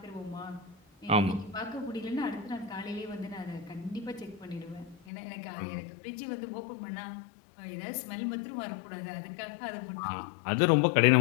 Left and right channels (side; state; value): right; drops out; at 5.0 s